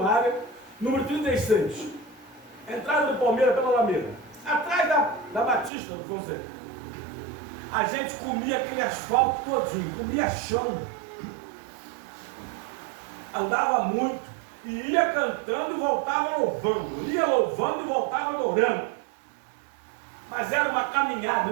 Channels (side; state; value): left; drops out; at 5.7 s